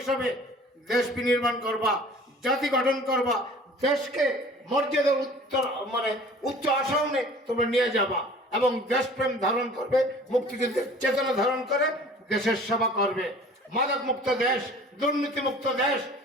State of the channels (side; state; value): both; normal; correlation 0.47